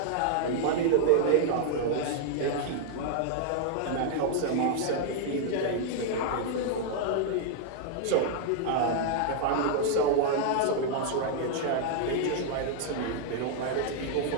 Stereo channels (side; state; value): both; different; correlation -0.01